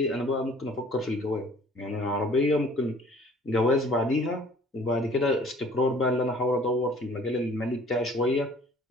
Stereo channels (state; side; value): normal; both; correlation 0.53